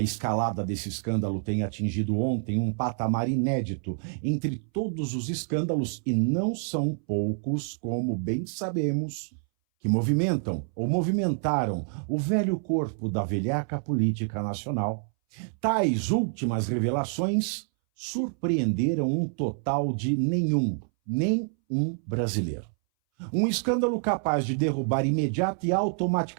desse escândalo tenha atingido ontem um patamar inédito entre todos os escândalos, e não são poucos, como bem sabemos, que movimentam ou movimentaram o velho corpo da velhaca política nacional. Tais últimas revelações surpreenderam um total de nem um brasileiro. Um escândalo capaz de derrubar imediata e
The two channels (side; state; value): left; silent; 60 dB below the other